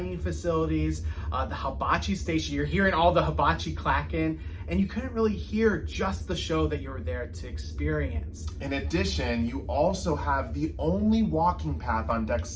facilities, the hibachi station. You're hearing all the hibachi clacking. and you couldn't really hear just the show that you were there to experience. In addition, you also have the only walking path on deck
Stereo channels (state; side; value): identical; both; correlation 1.00